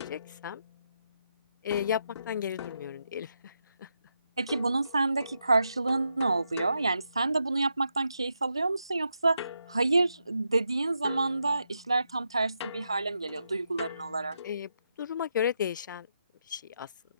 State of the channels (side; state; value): both; inverted; correlation -0.83